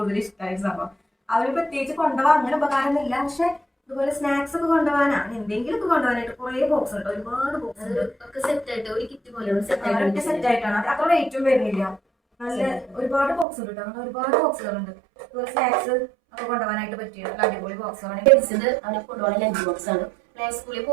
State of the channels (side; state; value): left; drops out; at 13.5 s